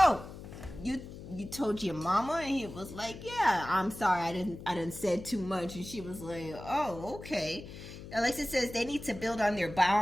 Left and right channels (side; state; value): left; noise; hum, 13 dB below the sound